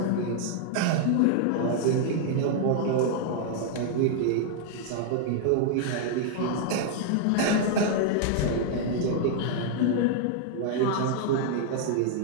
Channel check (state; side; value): different; both; correlation -0.01